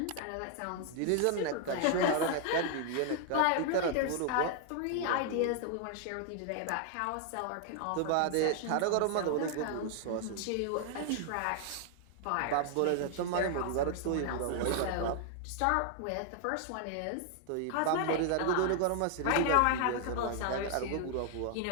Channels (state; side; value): different; both; correlation 0.00